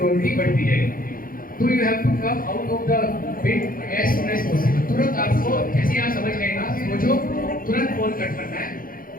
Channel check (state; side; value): late; right; 0.41 ms